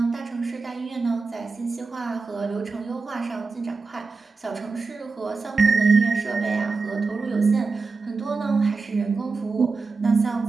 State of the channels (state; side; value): quieter; left; 4.3 dB